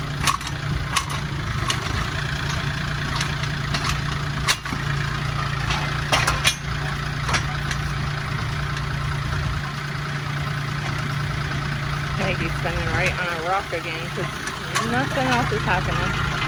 He's spinning right on a rock again because nothing else is happening.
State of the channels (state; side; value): identical; both; correlation 1.00